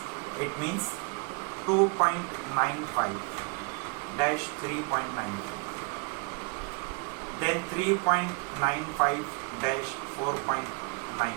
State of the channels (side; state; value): left; quieter; 33.9 dB